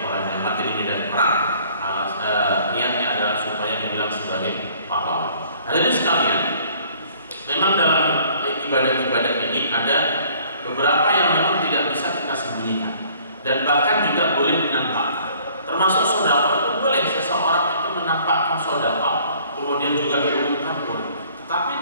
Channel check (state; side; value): inverted; both; correlation -0.56